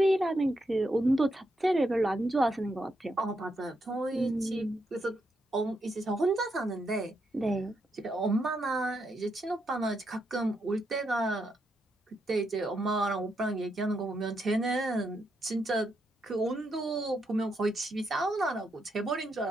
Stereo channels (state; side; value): normal; both; correlation 0.81